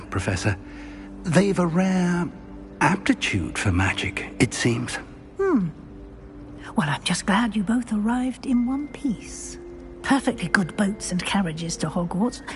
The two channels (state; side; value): identical; both; correlation 1.00